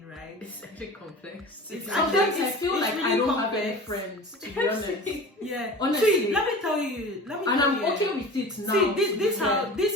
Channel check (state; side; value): normal; both; correlation 0.37